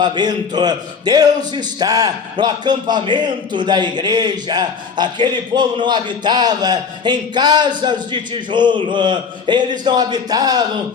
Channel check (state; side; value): quieter; right; 5.8 dB